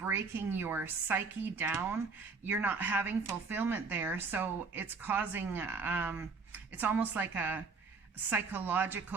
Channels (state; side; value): quieter; left; 4.5 dB